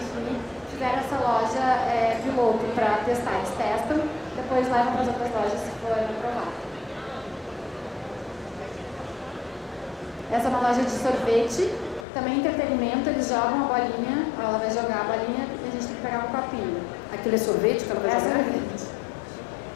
fizeram essa loja piloto para testar. Eles testam, depois levam para as outras lojas se for aprovado. Essa é uma loja de sorvete, também entretenimento, eles jogam a bolinha, ela vai jogar a bolinha e a gente tem que pegar um copinho. Aquilo é sorvete que ela vai jogar? Sorvete.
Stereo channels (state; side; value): drops out; right; at 12.1 s